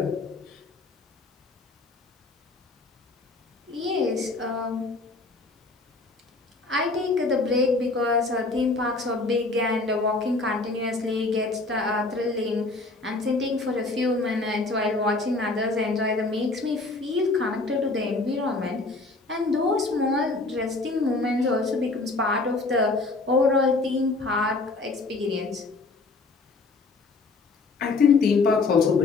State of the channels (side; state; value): right; quieter; 3.5 dB